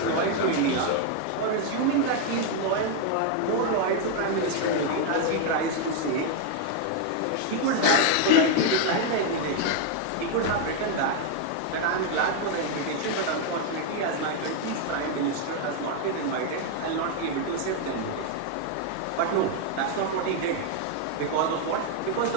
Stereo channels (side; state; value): both; different; correlation 0.01